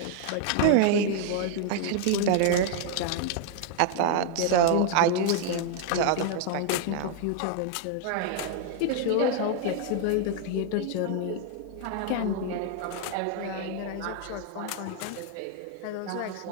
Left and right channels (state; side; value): different; both; correlation 0.00